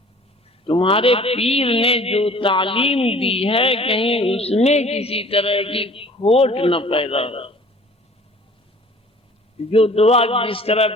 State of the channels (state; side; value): normal; both; correlation 0.49